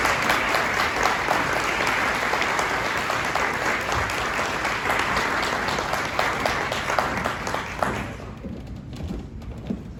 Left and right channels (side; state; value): both; identical; correlation 1.00